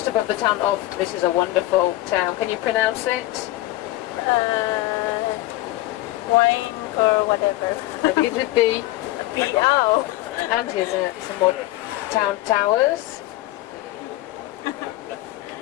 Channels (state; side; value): quieter; right; 17.4 dB